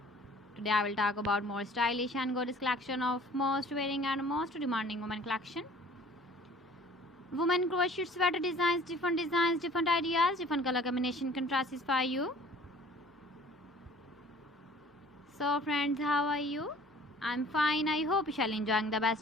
Today I will talk about more stylish and gorgeous collection of most wearing and most demanding women collection. Women crochet sweater designs, different ideas, different color combination contrasts for you. So friends, how are you? I'm fine. I hope you shall enjoying the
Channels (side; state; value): both; normal; correlation 0.51